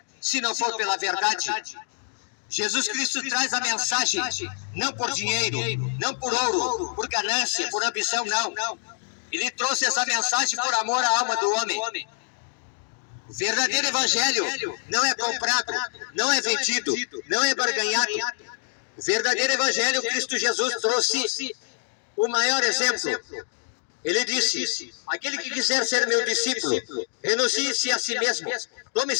se não for pela verdade. Jesus Cristo traz a mensagem não por dinheiro, não por ouro, por ganância, por ambição, não. Ele trouxe essa mensagem por amor à alma do homem. O verdadeiro evangelho não é comprado, não é vendido, não é barganhado. O verdadeiro evangelho, Cristo Jesus trouxe o maior exemplo. Ele disse: aquele que quiser ser meu discípulo, renuncie-se a si mesmo, tome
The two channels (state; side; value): silent; right; digital silence